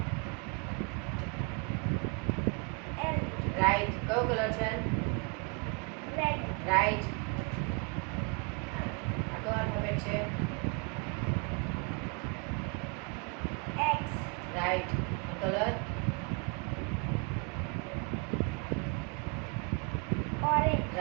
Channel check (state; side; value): quieter; left; 33.3 dB